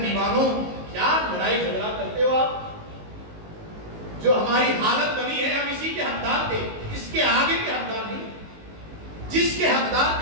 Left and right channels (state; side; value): late; left; 19 ms